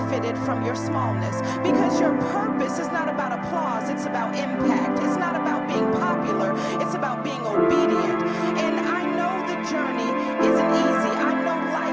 from your smallness. Because your purpose is not about applause. It's about impact. It's not about being popular. It's about being obedient. And I know the journey isn't easy. I know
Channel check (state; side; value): identical; both; correlation 1.00